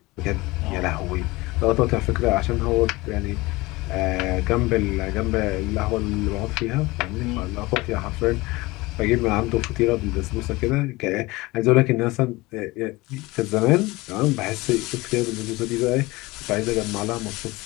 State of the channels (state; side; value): quieter; right; 21.7 dB